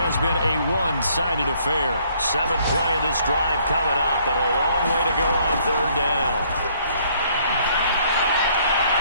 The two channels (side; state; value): both; inverted; correlation -0.64